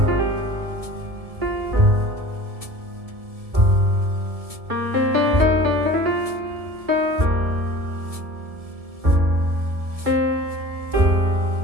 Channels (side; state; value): left; late; 1.7 ms